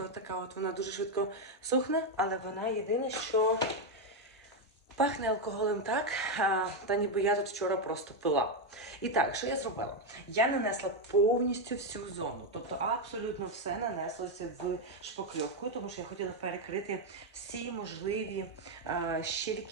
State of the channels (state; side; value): normal; both; correlation 0.05